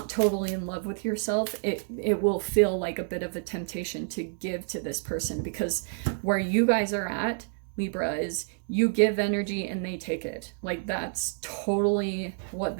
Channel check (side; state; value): left; silent; 59 dB below the other